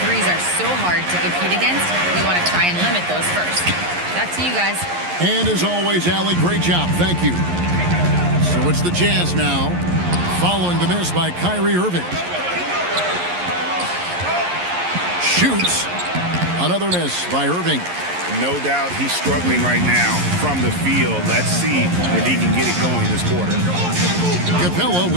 are so hard to compete against, we want to try and limit those first. Back to you guys. And as always, Allie, great job. Thank you. So it's the Jazz now, following the miss by Kyrie Irving. Shoots. Another miss by Irving. No doubt he's struggling right now from the field. Let's see if he can get it going this quarter. Capella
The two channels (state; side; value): late; left; 11 ms